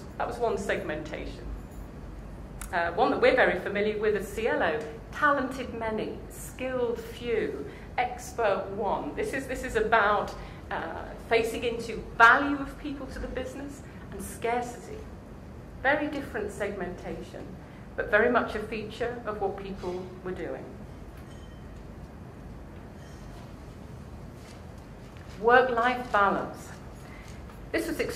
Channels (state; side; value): identical; both; correlation 1.00